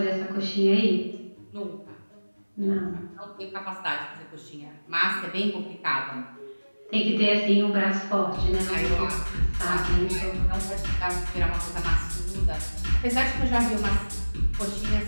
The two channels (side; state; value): both; inverted; correlation -1.00